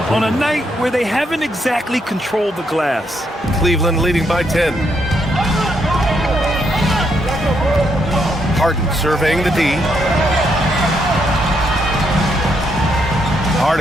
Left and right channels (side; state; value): both; normal; correlation 0.76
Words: on a night where they haven't exactly controlled the glass. Cleveland leading by 10. Harden surveying the D. Hard